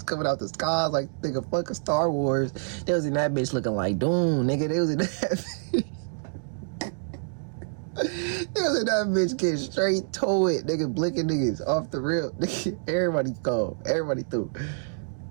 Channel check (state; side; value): silent; left; digital silence